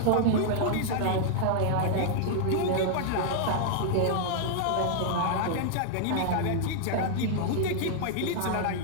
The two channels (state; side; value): different; both; correlation -0.01